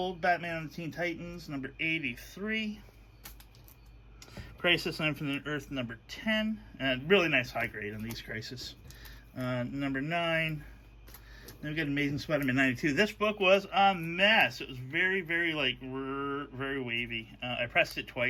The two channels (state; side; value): identical; both; correlation 1.00